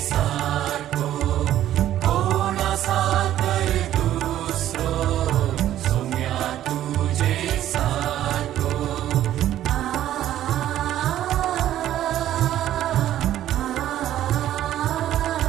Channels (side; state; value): left; quieter; 12.4 dB